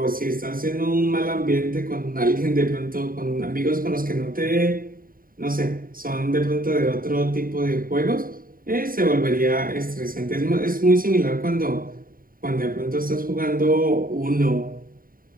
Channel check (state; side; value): late; left; 0.41 ms